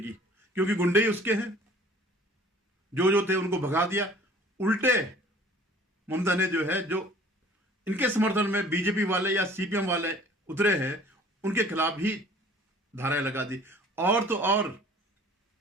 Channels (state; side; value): normal; both; correlation 0.50